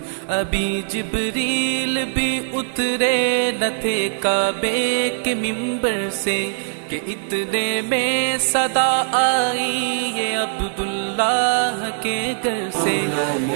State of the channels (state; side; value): silent; left; digital silence